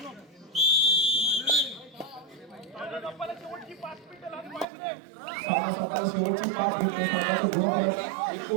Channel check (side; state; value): left; drops out; at 4.7 s